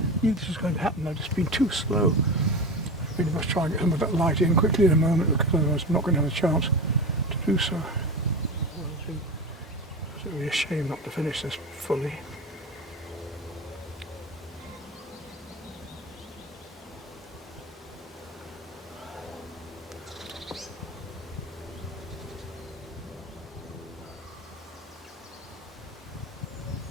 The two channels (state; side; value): normal; both; correlation 0.26